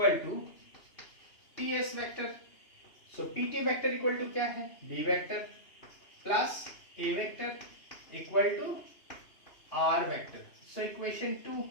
to T S vector. So P T vector equal to क्या है, B vector plus A vector equal to R vector. So equation 2,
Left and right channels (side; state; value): right; late; 2.9 ms